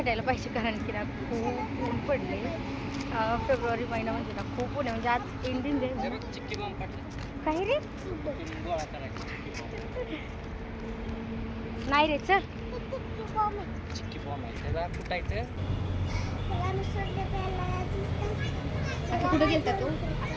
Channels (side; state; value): both; identical; correlation 1.00